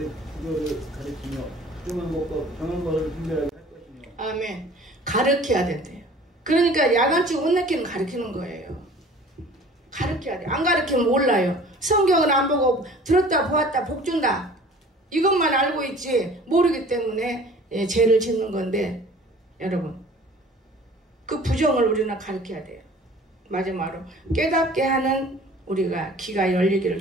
구별을 가르치며 부정한 것과 정한 것을 분별하게 할 것이며. 아멘. 가르쳐야 된대요. 그러니까 야간치 옷 내키는 가르치는 거예요. 가르쳐야 돼. 안 가르치면 몰라요. 성경은 안 보고 들었다 보았다 복 준다. 이것만 알고 있지 모르기 때문에 죄를 짓는 건데 여러분 그 부정을 우리는 가르쳐야 돼요. 마지막으로 깨닫게 하는 우리가 귀가 열리기를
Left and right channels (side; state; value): both; normal; correlation 0.47